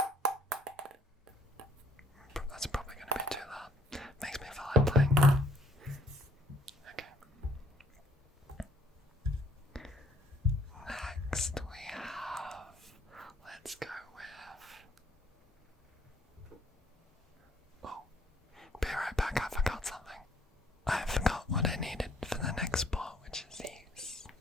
That's probably going to be too loud. Makes me feel like playing. Okay. Next we have, let's go with, oh, be right back, I forgot something. I forgot what I needed for the next sport, which is these.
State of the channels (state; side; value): normal; both; correlation 0.63